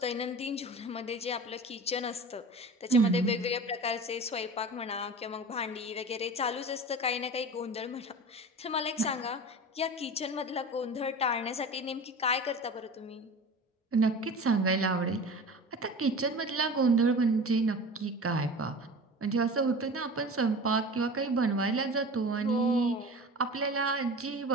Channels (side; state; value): both; normal; correlation 0.35